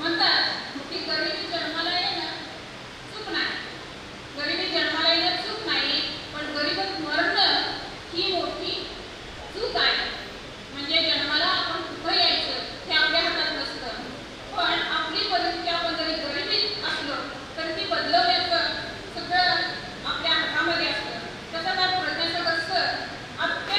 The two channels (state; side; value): identical; both; correlation 1.00